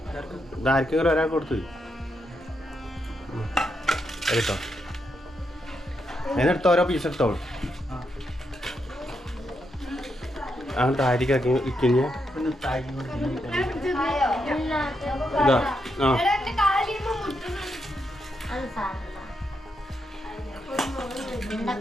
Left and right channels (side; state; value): both; normal; correlation 0.81